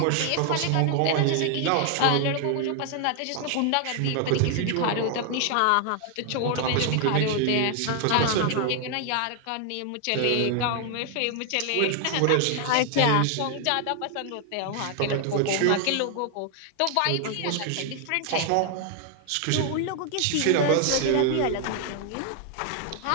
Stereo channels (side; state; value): both; different; correlation 0.00